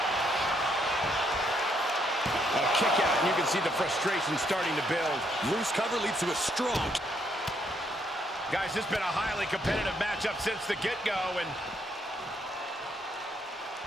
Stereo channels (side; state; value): both; normal; correlation 0.73